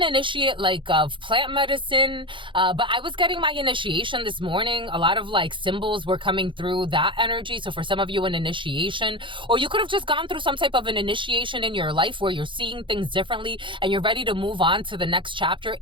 initiate, like of plant medicine, but I was getting my initiation this morning. A lot of like symbols were coming through that energy. So for some of you, an initiation, or you could have just gone through some type of an initiation in your life where you're seeing things differently and you're ready to move on to the next chapter.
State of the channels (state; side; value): late; left; 0.24 ms